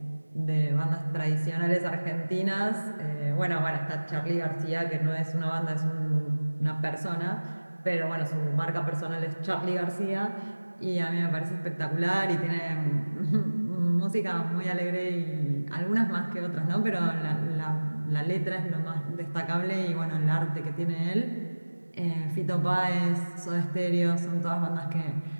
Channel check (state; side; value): inverted; both; correlation -1.00